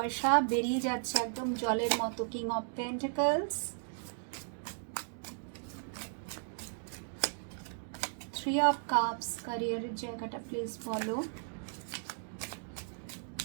বেরিয়ে যাচ্ছে একদম জলের মতো। King of pentacles, 3 of cups. ক্যারিয়ারের জায়গাটা প্লিজ বলো,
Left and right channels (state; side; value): silent; left; digital silence